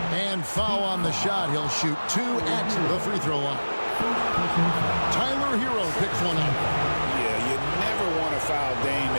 And foul on the shot. He'll shoot 2 at the free throw line. Tyler Hero picks one up. Yeah, you never want to foul Dame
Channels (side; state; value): both; inverted; correlation -1.00